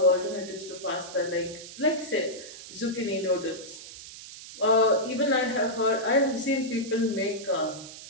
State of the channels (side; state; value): right; noise; hiss, 14 dB below the sound